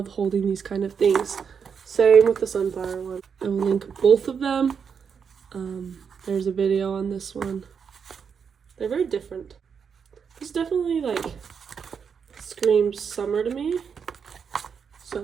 holding these kind of things. Same with the sunflower one. I will link both of them. There's a video on this one. They're very different. This definitely like screams summer to me.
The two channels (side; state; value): left; quieter; 6.6 dB